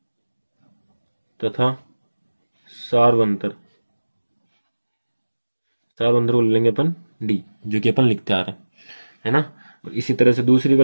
तथा सार्वंतर सार्वंतर को ले लेंगे अपन डी, जो कि अपन लिखते आ रहे हैं, है ना। और इसी तरह से दूसरी का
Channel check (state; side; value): inverted; both; correlation -1.00